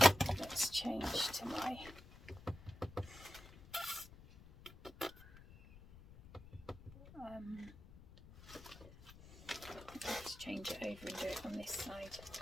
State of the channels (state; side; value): noise; left; rumble, 18 dB below the sound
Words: Let's change to my let's change it over and do it on this side,